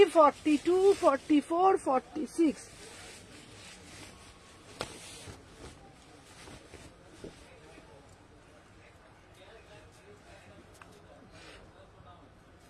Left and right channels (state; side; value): identical; both; correlation 1.00